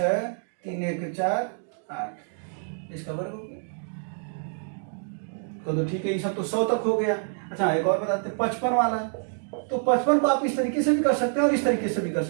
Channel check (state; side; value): silent; left; 60 dB below the other